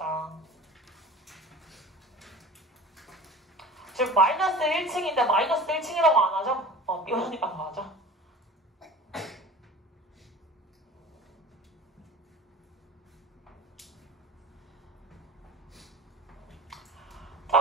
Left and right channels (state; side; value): normal; both; correlation 0.39